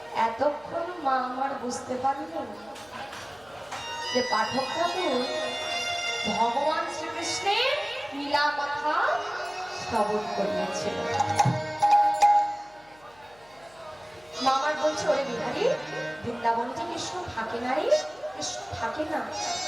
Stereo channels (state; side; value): noise; left; hum, 28 dB below the sound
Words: এতক্ষণ মা আমার বুঝতে পারলেন যে পাঠক ঠাকুর ভগবান শ্রীকৃষ্ণের লীলা কথা শ্রবণ করিয়াছিল। মা আমার বলছে, ওরে বিহারী, বৃন্দাবনে যে কৃষ্ণ থাকে না রে, কৃষ্ণ থাকে না।